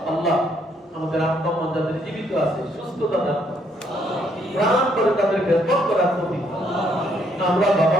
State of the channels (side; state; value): both; normal; correlation 0.70